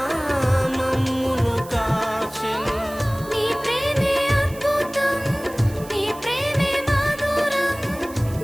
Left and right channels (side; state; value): right; noise; hiss, 19 dB below the sound